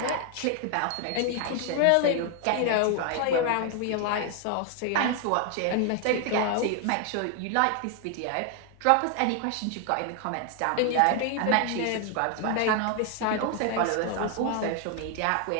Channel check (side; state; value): both; different; correlation 0.00